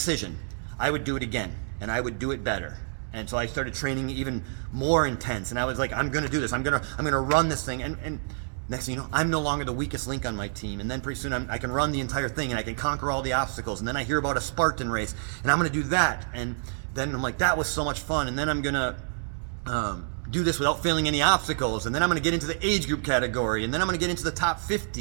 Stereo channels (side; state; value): left; silent; 60 dB below the other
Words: I would do it again, and I would do it better. And so I started training even more intense, and I was like, I'm going to do this. I'm going to run this thing. And next thing you know, I'm no longer the weakest link on my team. And then pretty soon I can run the entire thing, and I can conquer all the obstacles. And then I hear about a Spartan race, and I'm going to do that. And then I'm like, that was so much fun. And then I'm going to do this without failing any obstacles. And then I'm going to get into the age group category. And then I'm going to get into the top